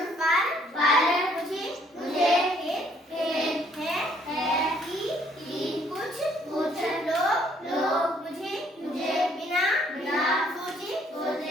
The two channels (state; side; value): normal; both; correlation 0.65